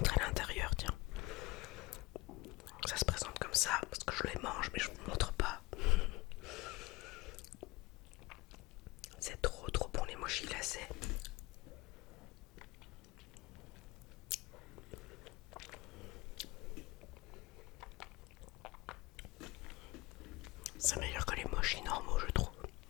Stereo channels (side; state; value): right; quieter; 21.8 dB